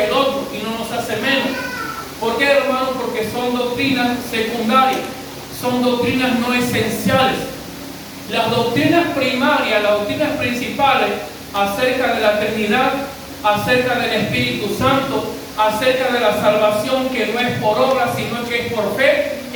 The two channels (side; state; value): both; identical; correlation 1.00